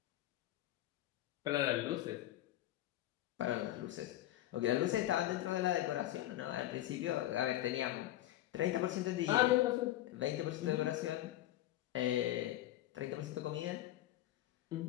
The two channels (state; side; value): quieter; right; 14.4 dB